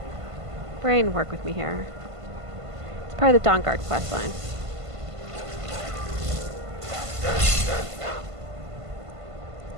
brain, work with me here. It's part of the Dawnguard questline.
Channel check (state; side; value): late; left; 1.5 ms